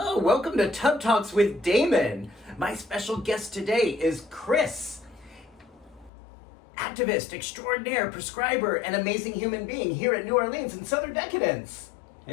welcome to Tub Talks with Damon. My special guest today is Chris, activist, extraordinaire, prescriber, and amazing human being here at New Orleans in Southern Decadence.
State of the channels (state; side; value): drops out; right; at 6.1 s